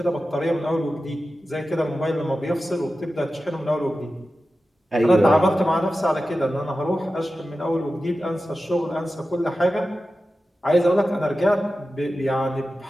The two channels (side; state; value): both; normal; correlation 0.93